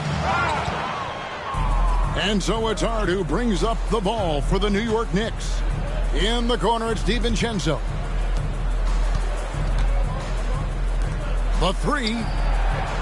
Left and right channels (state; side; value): identical; both; correlation 1.00